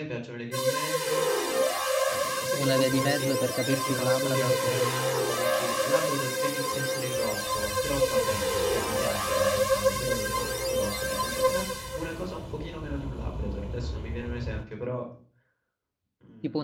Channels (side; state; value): both; identical; correlation 1.00